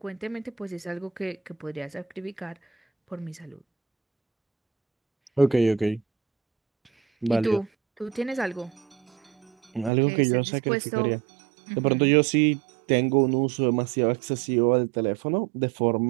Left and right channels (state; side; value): drops out; left; at 9.9 s